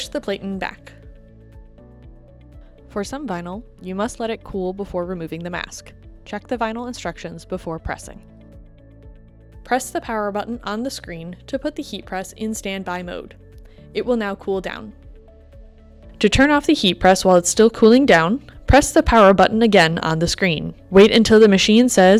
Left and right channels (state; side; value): identical; both; correlation 1.00